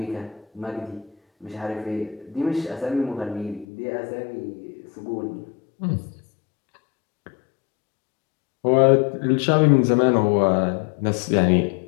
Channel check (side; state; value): right; drops out; at 3.7 s